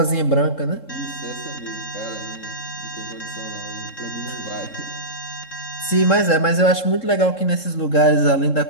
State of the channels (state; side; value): late; right; 3.7 ms